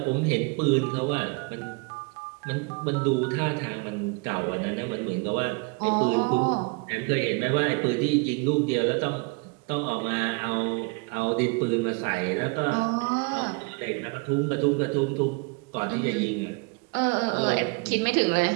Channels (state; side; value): quieter; left; 31.3 dB